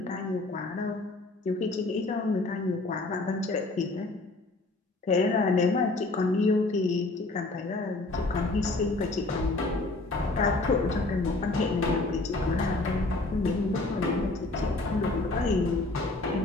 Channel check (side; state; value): right; quieter; 3.1 dB